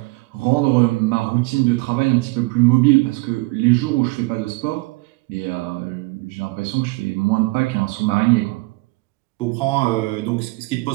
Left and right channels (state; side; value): quieter; left; 23.5 dB